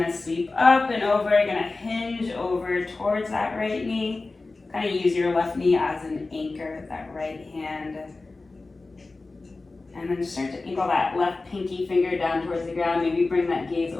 to sweep up and over. You're going to hinge over towards that right knee. Kind of use your left knee as an anchor with that right hand. And then just start to angle that left pinky finger down towards the ground. Maybe bring that gaze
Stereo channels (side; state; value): right; quieter; 3.5 dB